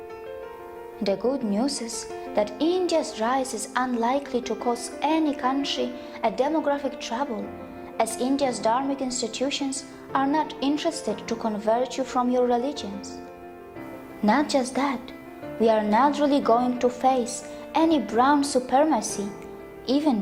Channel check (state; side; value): identical; both; correlation 1.00